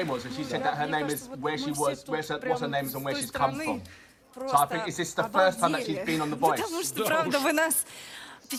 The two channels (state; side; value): identical; both; correlation 1.00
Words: was, and she said that her name is where she was, what's her name is and where she's come from. So I think is this the first time that she's been on The Voice? Потому что, правда, вы нас